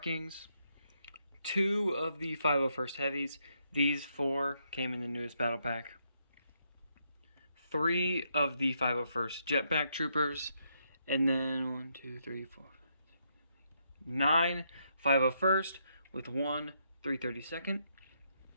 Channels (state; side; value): inverted; both; correlation -0.77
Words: 2 of the 501st Heavies. These 4 came in the newest battle pack. 3 of the 501st Jetpack Troopers. And then 1, 2, 3, 4, 9 501st with 1 332nd.